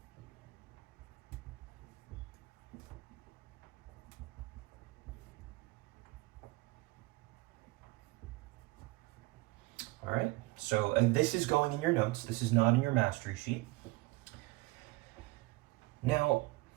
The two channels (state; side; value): quieter; left; 21.3 dB